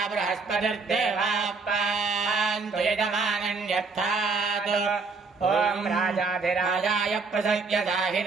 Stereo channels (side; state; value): left; quieter; 4.3 dB